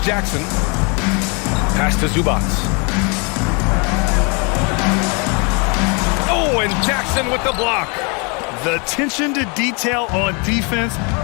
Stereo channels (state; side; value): quieter; right; 32.5 dB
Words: Jackson. Pass to Zubats. Oh, and Jackson with the block. The attention to detail on defense.